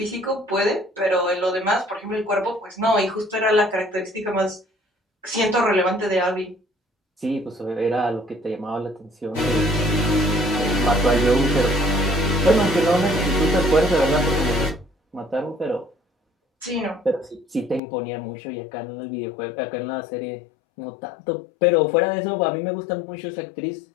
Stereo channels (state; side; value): drops out; right; at 17.8 s